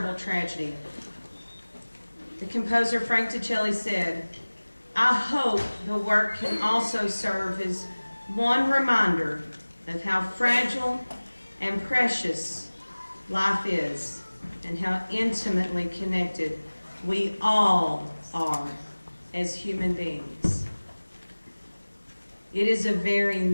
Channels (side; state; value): both; inverted; correlation -1.00